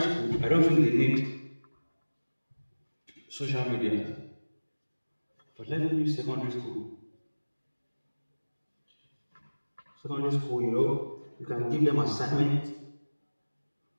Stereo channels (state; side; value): inverted; both; correlation -1.00